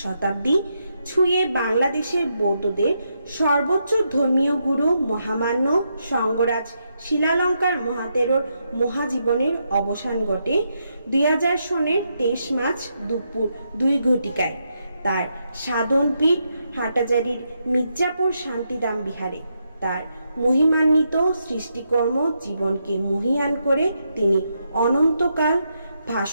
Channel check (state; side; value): inverted; both; correlation -0.81